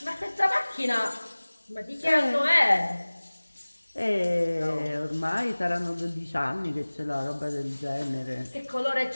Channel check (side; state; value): both; inverted; correlation -1.00